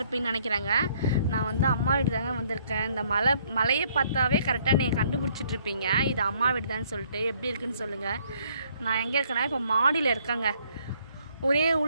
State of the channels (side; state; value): both; inverted; correlation -0.65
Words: நினைக்கிறாங்க. நான் வந்து அம்மா வீடு தாங்க வந்திருக்கேன். இந்த மலையை பார்த்தாவே கரெக்டாக நீங்கள் கண்டுபிடிச்சிட்ருப்பீங்க இது அம்மா வீடு தான் சொல்லிட்டு. எப்படி இருக்குன்னு சொல்லுங்கள். நான் எங்கே இருக்கேன்னா இப்போ மாடியில் இருக்கேங்க. ஒரே